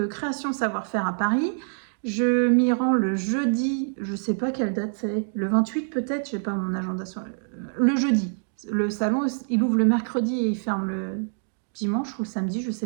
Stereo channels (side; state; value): left; silent; digital silence